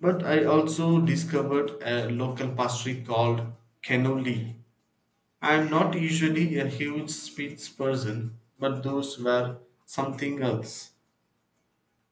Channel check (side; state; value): both; identical; correlation 1.00